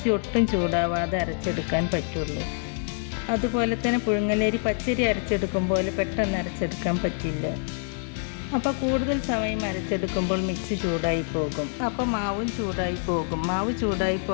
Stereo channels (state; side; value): silent; right; 61 dB below the other